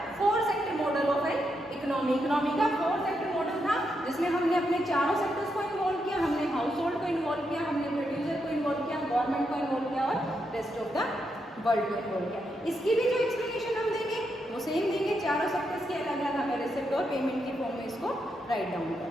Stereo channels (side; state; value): both; normal; correlation 0.82